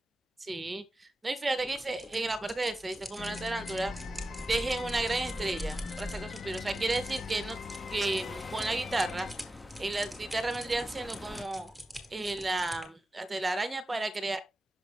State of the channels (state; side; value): normal; both; correlation 0.92